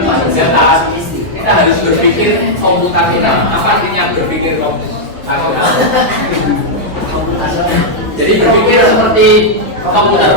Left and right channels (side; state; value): both; normal; correlation -0.04